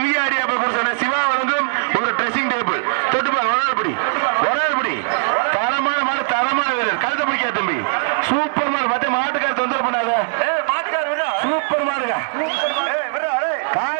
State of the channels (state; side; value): silent; left; digital silence